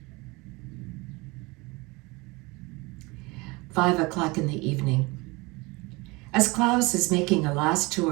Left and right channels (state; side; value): quieter; left; 24.8 dB